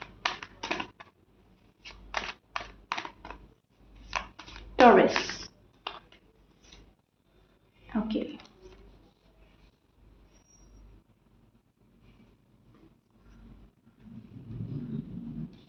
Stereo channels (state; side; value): identical; both; correlation 1.00